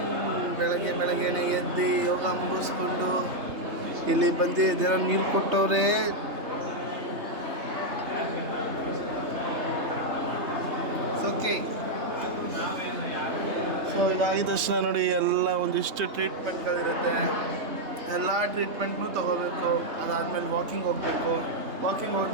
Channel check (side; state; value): left; late; 3.3 ms